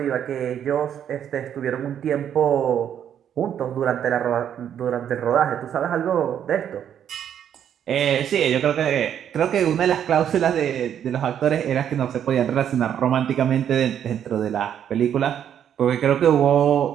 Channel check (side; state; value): left; quieter; 9.4 dB